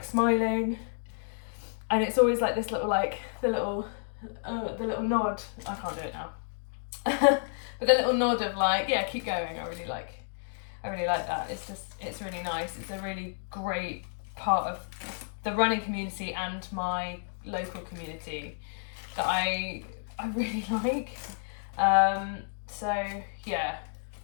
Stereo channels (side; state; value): right; silent; digital silence